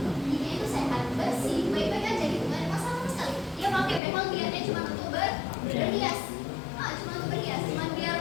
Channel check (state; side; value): drops out; right; at 4.0 s